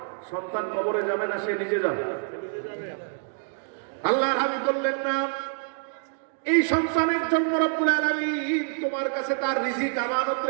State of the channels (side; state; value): left; silent; digital silence